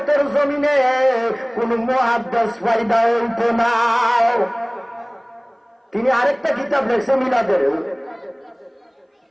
জমিনে কোন মুহাদ্দিস পয়দা হইতো না। তিনি আরেকটা কিতাব লেখছে মিলাদের,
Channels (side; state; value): both; identical; correlation 1.00